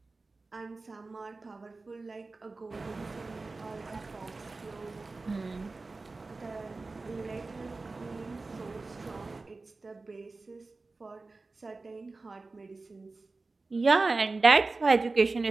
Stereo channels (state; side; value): quieter; left; 3.6 dB